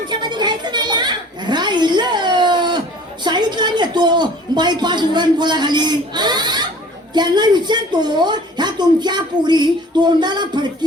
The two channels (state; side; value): normal; both; correlation 0.48